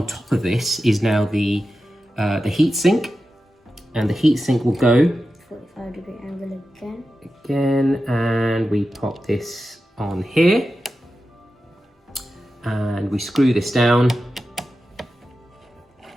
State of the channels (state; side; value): normal; both; correlation 0.92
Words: top of this is now the heatsink, and the heatsink will go 45-degree angle again, and we pop this on here, and we screw this down.